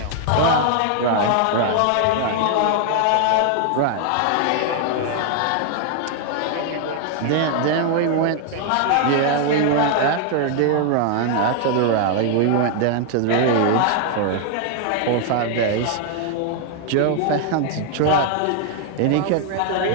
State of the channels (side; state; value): both; different; correlation 0.00